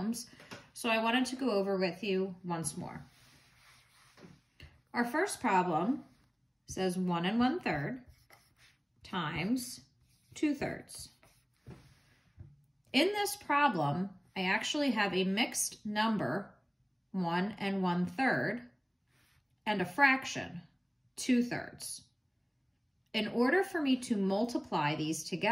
so I wanted to go over with you once more. Our first problem says 1 1/3 times 2/3. In this problem, I actually have a mixed number, 1 1/3, and a fraction, 2/3. In order for me to multiply these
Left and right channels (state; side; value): identical; both; correlation 1.00